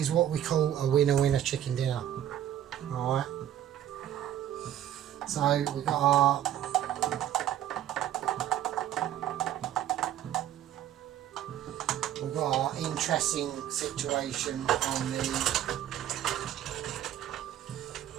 what we call a winner chicken dinner. Alright. So we've got our interesting situation on the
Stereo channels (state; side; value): quieter; left; 11.4 dB